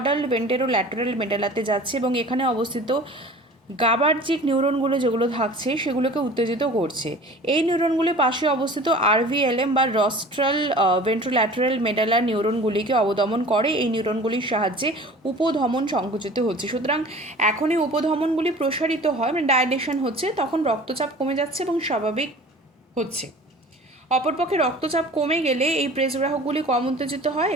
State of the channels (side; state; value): both; normal; correlation 0.43